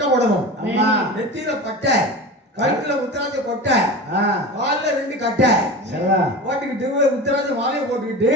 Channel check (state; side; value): normal; both; correlation 0.30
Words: போடணும். நெத்தியில பட்டை, கழுத்துல உத்தராஜ கொட்டை, கால்ல 2 கட்டை போட்டுக்கிட்டு உத்தராஜ மாலையை போட்டுக்கிட்டு